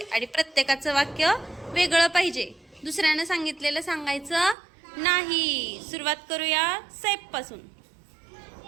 आणि प्रत्येकाचं वाक्य वेगळं पाहिजे. दुसऱ्यानं सांगितलेलं सांगायचं नाही. सुरुवात करूया सैफ पासून.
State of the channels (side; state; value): left; drops out; at 4.5 s